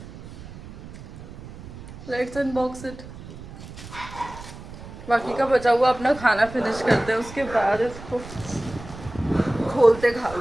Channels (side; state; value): right; noise; rumble, 14 dB below the sound